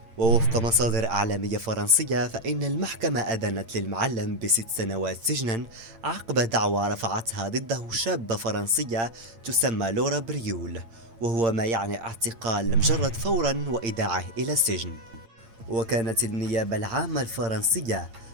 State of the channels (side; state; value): left; late; 8.8 ms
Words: ووفق مصادر إعلامية فرنسية فإن المحكمة أدانت للمعلم ب6 سنوات سجنا عقب دعوى رفعتها ضده شابة فرنسية تسمى لورا بريول، وهو ما يعني اعتقال المجرد فورا وإيداعه إلى السجن. وكانت النيابة العامة الفرنسية